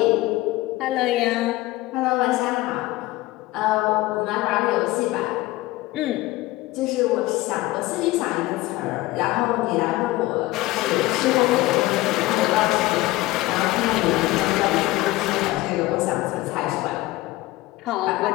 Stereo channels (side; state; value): right; quieter; 18.5 dB